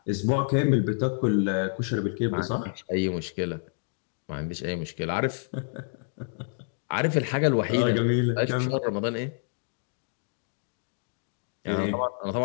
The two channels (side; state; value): right; silent; digital silence